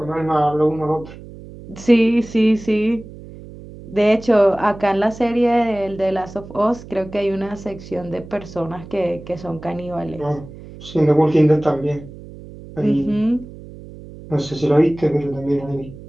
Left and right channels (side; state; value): right; noise; hum, 16 dB below the sound